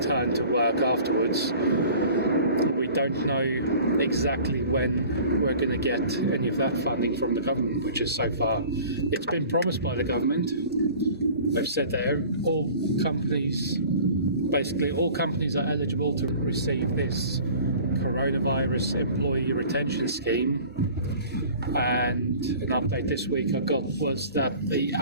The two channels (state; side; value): inverted; both; correlation -0.45